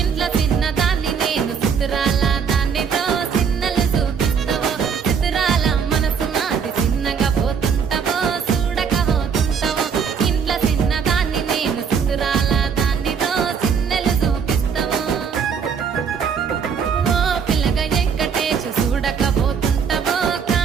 ఇంట్లో చిన్నదాన్ని నేను సితిరాల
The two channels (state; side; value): quieter; left; 6.6 dB